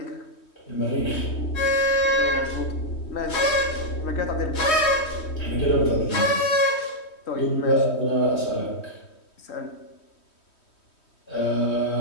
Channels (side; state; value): right; late; 3.1 ms